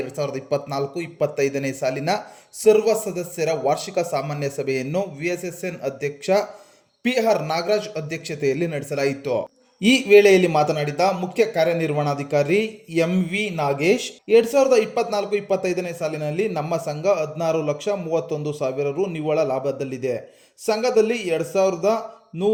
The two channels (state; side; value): identical; both; correlation 1.00